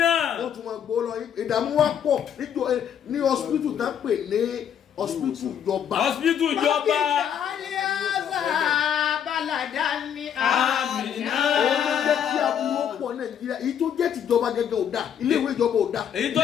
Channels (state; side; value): quieter; right; 8.8 dB